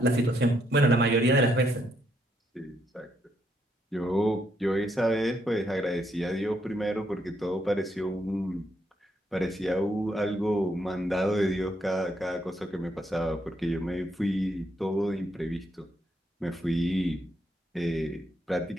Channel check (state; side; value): normal; both; correlation 0.75